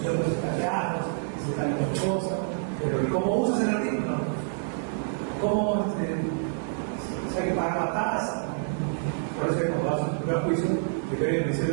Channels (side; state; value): left; silent; digital silence